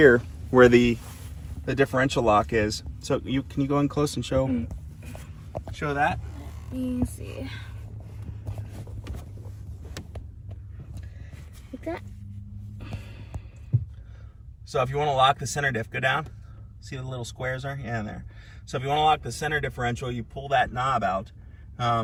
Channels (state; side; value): identical; both; correlation 1.00